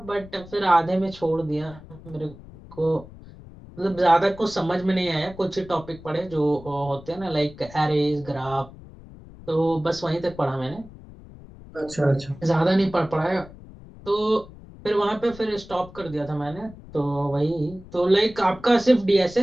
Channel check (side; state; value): left; noise; rumble, 18 dB below the sound